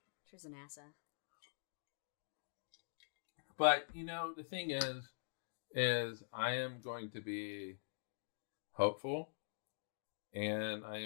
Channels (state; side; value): silent; right; digital silence